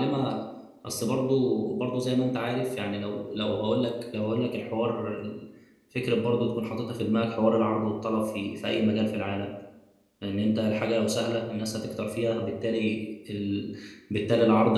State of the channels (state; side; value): identical; both; correlation 1.00